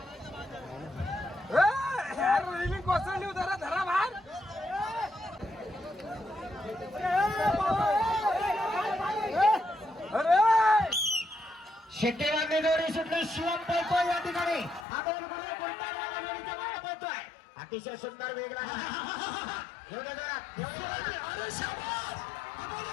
कोसळली उधारा धरा भार. शेट्टीवांनी जोडी सुटली. शिवम पळतोय या ठिकाणी. अमोल गुरव गुंटाळवाला जोडीच्या मागे पळतोय. अतिशय सुंदर वेग लागला. एवढ्या जोरात, एवढ्या जोरात. एवढ्या जोरात.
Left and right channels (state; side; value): drops out; right; at 14.9 s